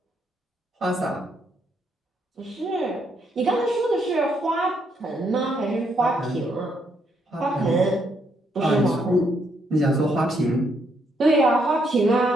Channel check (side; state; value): both; normal; correlation 0.74